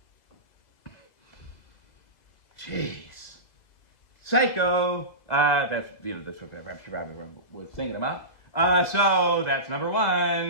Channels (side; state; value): right; late; 2.0 ms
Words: Jeez, Psycho. That's what she probably was thinking about. So that's number